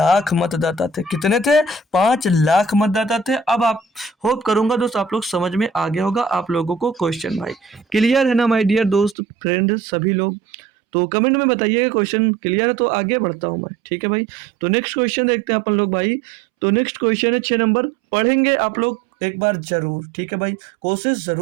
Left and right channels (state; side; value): drops out; left; at 9.2 s